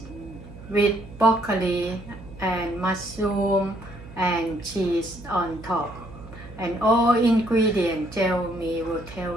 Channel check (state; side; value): noise; right; hum, 17 dB below the sound